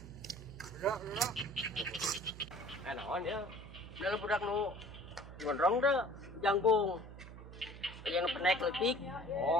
Naon ya? Dalam budak nu gondrong dah jangkung. Yang penek letik.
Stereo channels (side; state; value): right; noise; hum, 14 dB below the sound